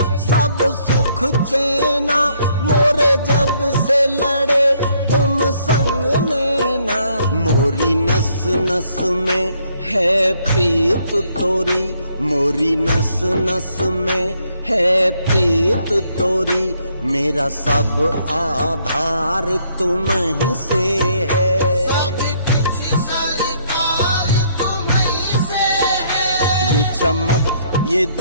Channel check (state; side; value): inverted; both; correlation -0.69